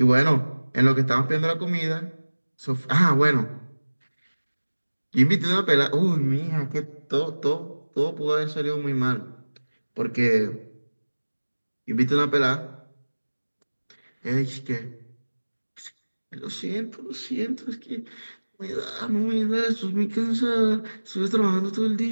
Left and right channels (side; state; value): both; inverted; correlation -1.00